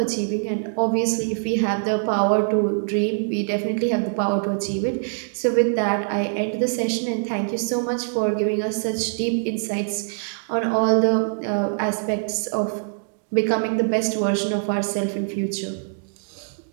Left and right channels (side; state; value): left; silent; digital silence